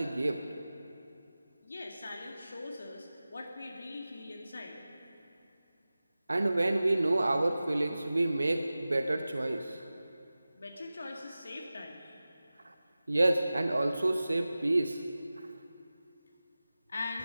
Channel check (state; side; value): inverted; both; correlation -0.96